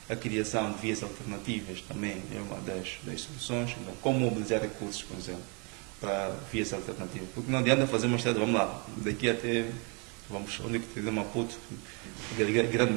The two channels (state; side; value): quieter; left; 33.7 dB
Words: A criação de vias alternativas também é uma das soluções. Então, como mobilizar recursos, por exemplo, para vias alternativas? Porque não adianta fazer uma estrada, vamos lá, daqui até, onde é que tem Maputo, Grande